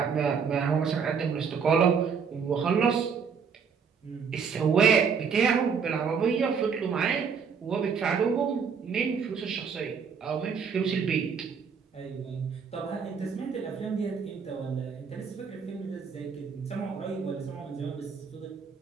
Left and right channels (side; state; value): left; quieter; 6.2 dB